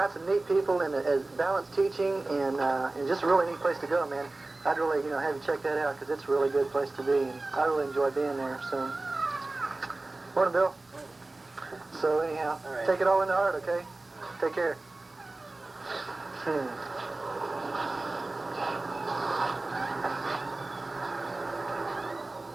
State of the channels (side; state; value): left; quieter; 3.0 dB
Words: some neat people and has balanced teaching and just a really neat place to go, man. I'd really, have you check that out because it's a really good place to be, and I really enjoy being there. So, morning, Bill. So anyhow, take it all in the heart, okay? Take care.